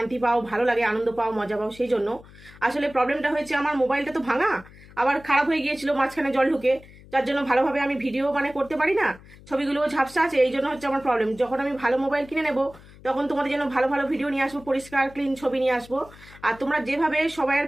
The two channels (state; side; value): noise; left; hum, 21 dB below the sound